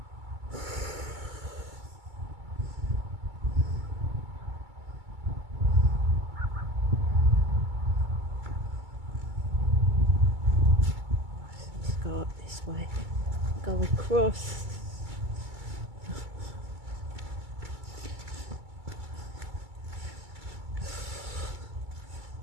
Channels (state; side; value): late; left; 2.3 ms